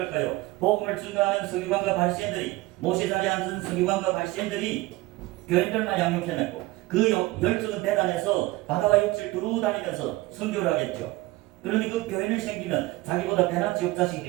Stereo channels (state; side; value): quieter; left; 19.8 dB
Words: 복음을 증거하는 서기관과 바리새인들이, 모세 자리에 앉은 서기관과 바리새인들이 교인들만 양육해냈고, 그 열정은 대단해서 바다와 육지를 두루 다니면서 선교를 하겠죠. 그런데 그 교인을 생기면 자기보다 배나 지옥 자식이